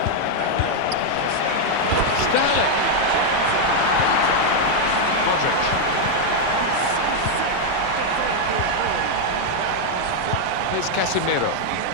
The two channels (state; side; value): different; both; correlation 0.00